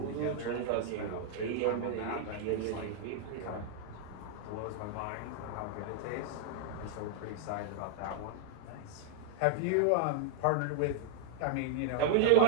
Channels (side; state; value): both; different; correlation -0.01